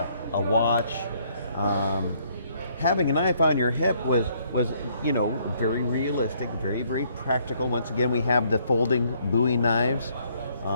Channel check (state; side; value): inverted; both; correlation -0.67